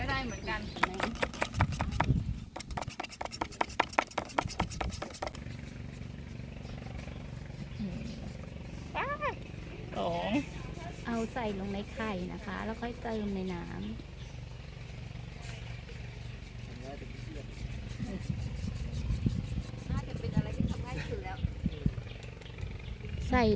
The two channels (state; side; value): identical; both; correlation 1.00